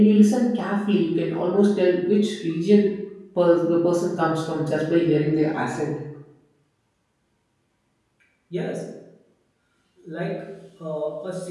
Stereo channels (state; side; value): identical; both; correlation 1.00